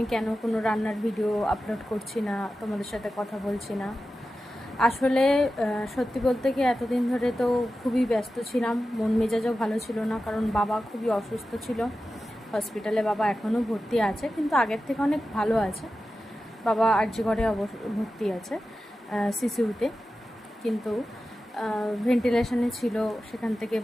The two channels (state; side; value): normal; both; correlation 0.93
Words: কেন কোনো রান্নার ভিডিও আপলোড করছি না, তোমাদের সাথে কথা বলছি না। আসলে সত্যি বলতে কি এতদিন ধরে তো খুবই ব্যস্ত ছিলাম, মন মেজাজও ভালো ছিল না, কারণ বাবা খুবই অসুস্থ ছিল। হসপিটালে বাবা এখনও ভর্তি আছে, কিন্তু আগের থেকে অনেক ভালো আছে। বাবা আরজি ঘরে ভর্তি আছে, সিসিউতে, কিন্তু ভেন্টিলেশনে ছিল। সেখান থেকে